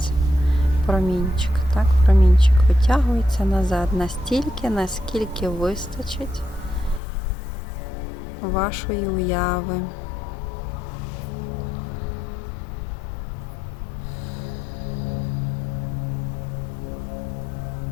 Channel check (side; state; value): right; drops out; at 7.0 s